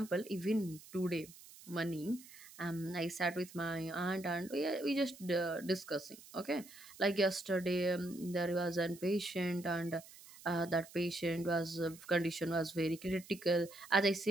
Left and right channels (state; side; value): noise; right; hiss, 19 dB below the sound